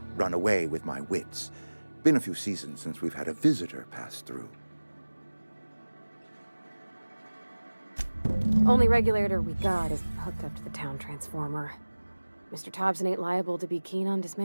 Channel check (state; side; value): inverted; both; correlation -1.00